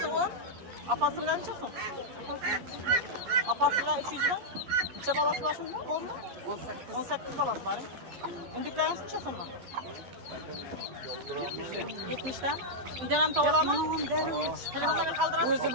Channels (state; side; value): late; left; 11 ms